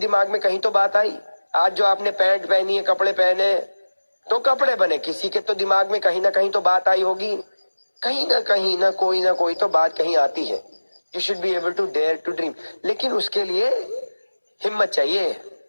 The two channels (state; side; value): inverted; both; correlation -1.00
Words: में कहीं तो बात आई। आज जो आपने पैंट पहनी है, कपड़े पहने, तो कपड़े बने, किसी के तो दिमाग में कहीं ना कहीं तो बात आई होगी। कहीं ना कोई तो बात कहीं आती है। You should be able to dare to dream. लेकिन उसके लिए हिम्मत चाहिए,